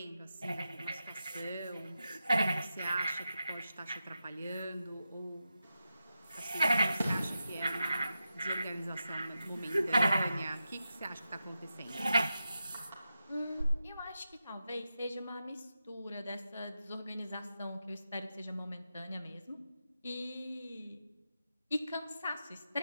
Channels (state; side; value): inverted; both; correlation -0.90